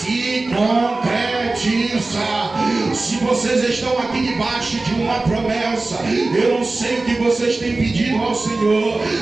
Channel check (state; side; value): quieter; left; 3.3 dB